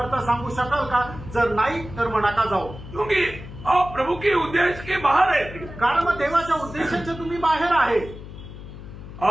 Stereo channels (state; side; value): noise; left; hum, 13 dB below the sound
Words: सांगू शकाल का, जर नाही तर मग नका जाऊ. क्योंकि आप प्रभु के उद्देश्य के बाहर है. कारण मग देवाच्या उद्देशाचे तुम्ही बाहेर आहे